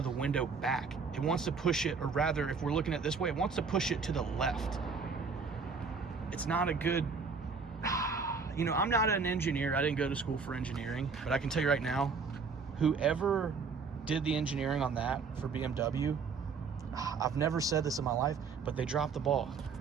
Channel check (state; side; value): quieter; left; 5.2 dB